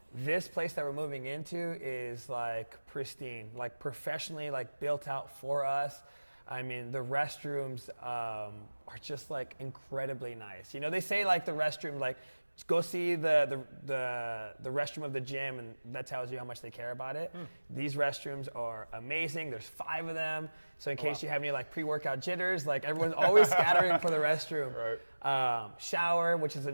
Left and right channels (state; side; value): inverted; both; correlation -1.00